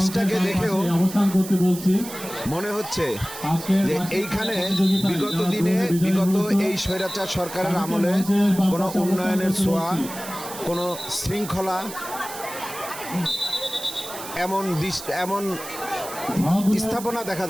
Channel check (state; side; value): noise; right; hiss, 12 dB below the sound